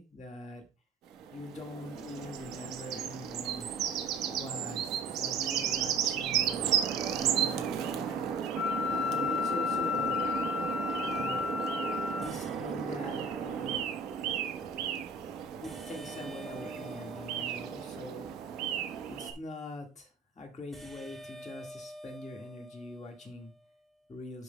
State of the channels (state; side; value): quieter; left; 3.5 dB